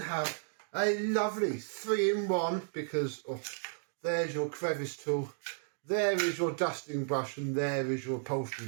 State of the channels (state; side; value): silent; left; digital silence